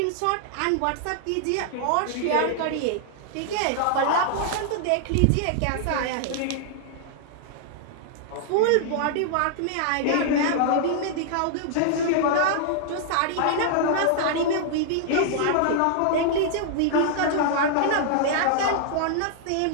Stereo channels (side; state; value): both; different; correlation -0.01